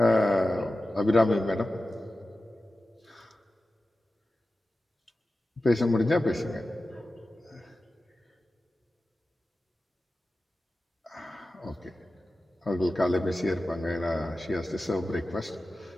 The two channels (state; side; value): normal; both; correlation 0.94